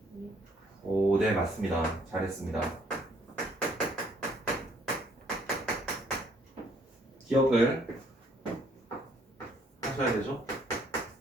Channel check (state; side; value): normal; both; correlation 0.64